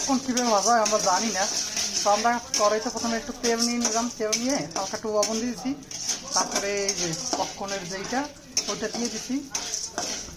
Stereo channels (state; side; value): identical; both; correlation 1.00